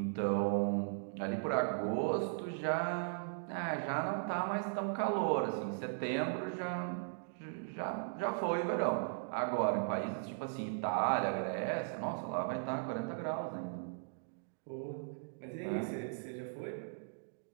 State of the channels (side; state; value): left; silent; digital silence